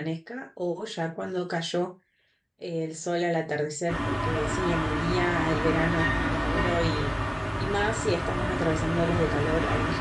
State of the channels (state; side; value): identical; both; correlation 1.00